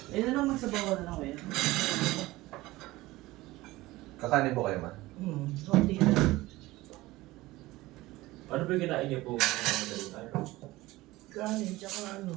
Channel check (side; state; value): left; quieter; 18.8 dB